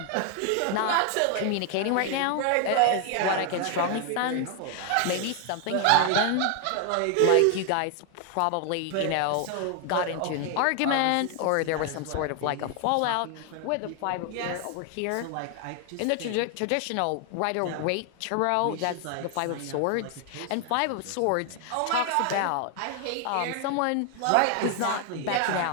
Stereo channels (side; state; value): both; different; correlation 0.00